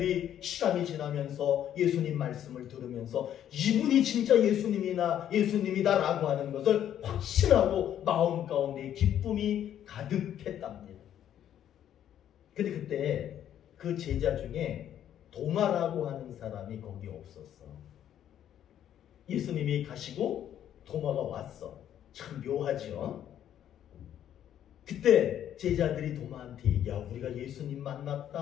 시간이 지나면서 예수님 말씀을 들으면서 이분이 진짜 예수님이다라고 하는 것을 확신하고 마음 가운데 기쁨이 가득했답니다. 근데 그때 그 제자 중에 도마라고 하는 사람이 거기 없었어. 예수님이 가시고 도마가 왔어. 참 묘하죠? 그때 제자들이 도마한테 얘기야. 우리가 예수님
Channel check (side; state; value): right; quieter; 10.5 dB